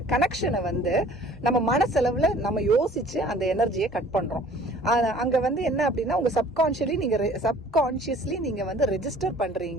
கனெக்ஷனை வந்து நம்ம மனசளவில் நம்ம யோசிச்சு அந்த எனர்ஜியை கட் பண்றோம். அங்க வந்து என்ன அப்படின்னா, உங்க சப்கான்ஷியஸ்லி நீங்க வந்து ரெஜிஸ்டர்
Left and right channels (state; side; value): normal; both; correlation 0.51